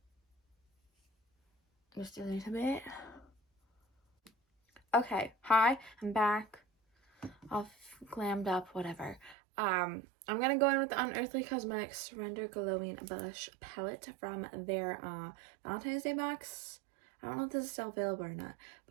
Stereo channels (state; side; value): drops out; left; at 9.3 s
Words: Just a little bit. Okay, hi, I'm back. All glammed up, whatever. I'm gonna go in with the Unearthly Cosmetics Surrender Glowing Blush Palette from their Valentine's Day box. I don't know if this is still available or not,